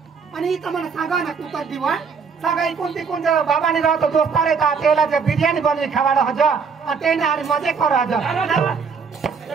आणि इथं मला सांगा ना तू कधी वा सगळी कोणती कोणत्या बाबाने राहतो दोस्तार येतात त्याला जे बिर्याणी बनवी खावायला हज आणि ते आणि मजे करू हज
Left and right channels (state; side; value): quieter; left; 5.7 dB